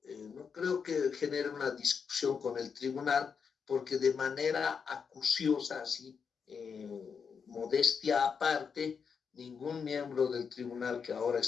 no creo que genere una discusión con el tribunal, porque de manera acuciosa, así, modestia aparte, ningún miembro del tribunal que ahora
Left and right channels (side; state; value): right; quieter; 6.2 dB